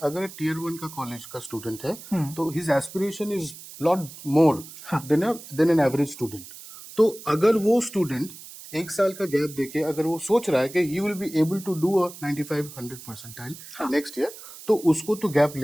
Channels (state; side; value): noise; right; hiss, 16 dB below the sound